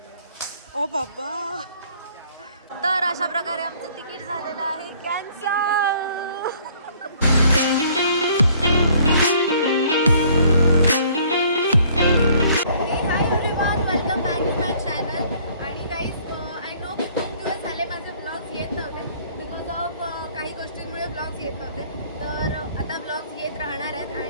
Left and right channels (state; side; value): inverted; both; correlation -0.58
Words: ओ बाबा. तर अशा प्रकारे आमचं तिकीट झालेलं आहे cancel. Welcome back to my channel. आणि गाईज आय नो की खूप दिवस झाले माझे ब्लॉग्स येत नव्हते बिकॉज ऑफ काही गोष्टींमुळे ब्लॉग्स येत नव्हते. तर आता ब्लॉग्स येत राहणार आहेत.